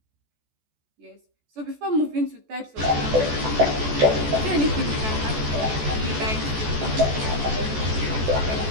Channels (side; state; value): left; late; 14 ms